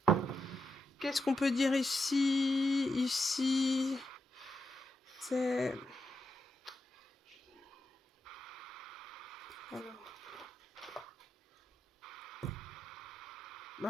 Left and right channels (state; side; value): normal; both; correlation 0.86